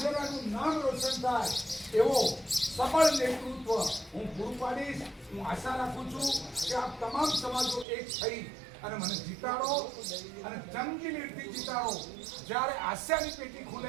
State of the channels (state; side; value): drops out; left; at 7.9 s